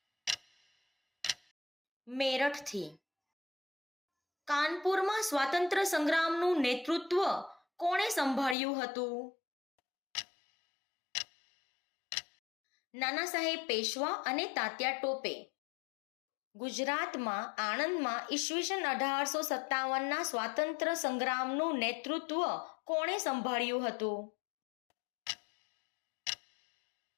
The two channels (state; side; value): drops out; right; at 8.6 s